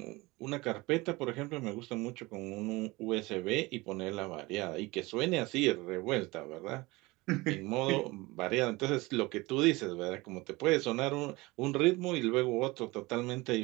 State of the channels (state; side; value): quieter; left; 22.4 dB